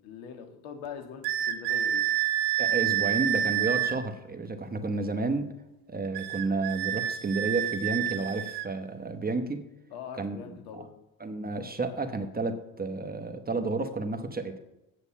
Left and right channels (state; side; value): quieter; left; 5.5 dB